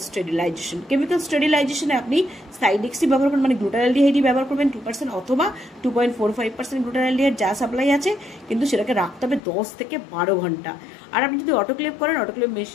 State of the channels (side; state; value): right; drops out; at 9.4 s